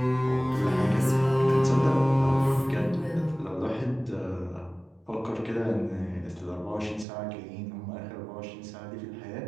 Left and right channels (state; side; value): drops out; left; at 7.1 s